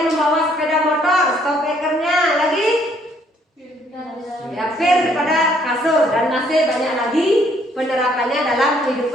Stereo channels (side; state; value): both; normal; correlation 0.66